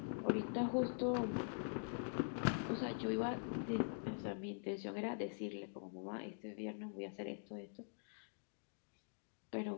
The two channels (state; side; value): silent; right; digital silence